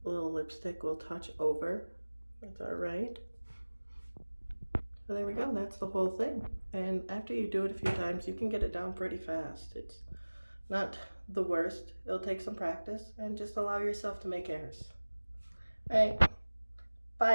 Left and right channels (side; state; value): both; inverted; correlation -1.00